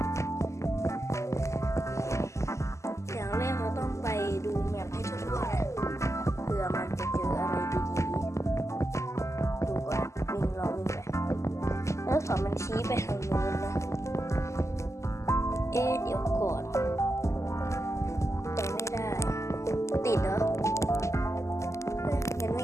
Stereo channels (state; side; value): late; right; 0.14 ms